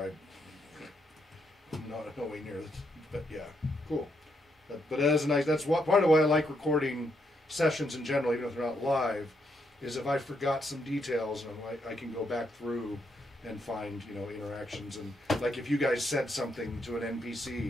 I'm not nowhere near this, but yeah, cool. But that is nice. That's part of why I like recording sessions in general, even if they're not live. Is if I forgot some details, and I can go back through and find interactions, and like if you guys said something to an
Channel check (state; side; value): normal; both; correlation 0.78